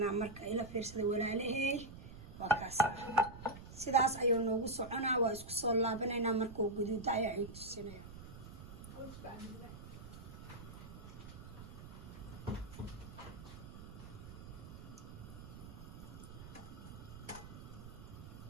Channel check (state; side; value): noise; right; rumble, 13 dB below the sound